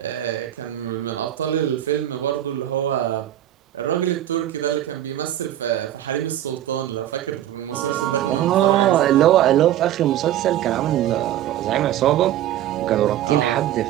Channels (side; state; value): left; quieter; 12.3 dB